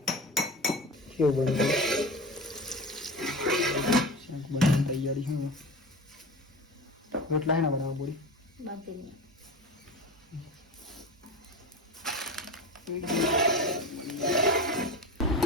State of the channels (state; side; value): normal; both; correlation 0.30